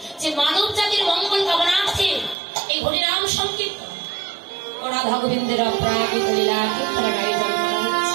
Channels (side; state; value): left; drops out; at 2.4 s